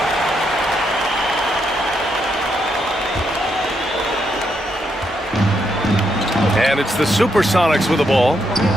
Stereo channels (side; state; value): both; normal; correlation 0.78